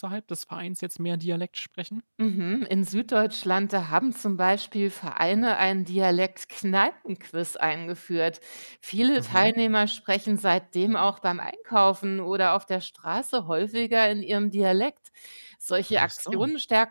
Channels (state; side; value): inverted; both; correlation -1.00